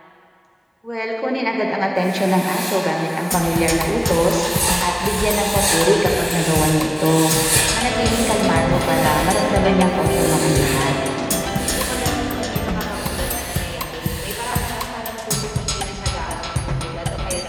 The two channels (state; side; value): identical; both; correlation 1.00